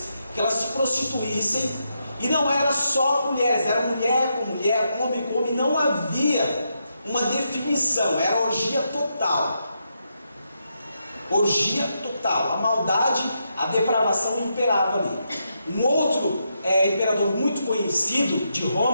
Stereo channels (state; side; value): inverted; both; correlation -0.82